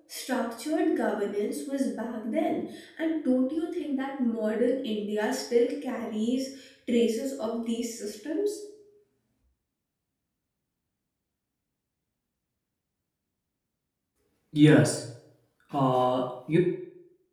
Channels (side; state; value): both; identical; correlation 1.00